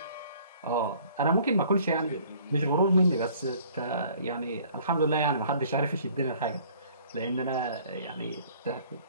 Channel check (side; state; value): both; inverted; correlation -0.55